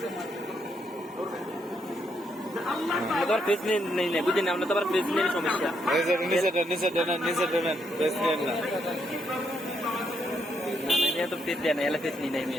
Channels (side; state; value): both; normal; correlation 0.76